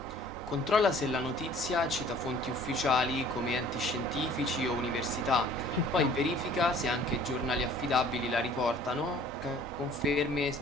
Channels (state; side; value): normal; both; correlation 0.52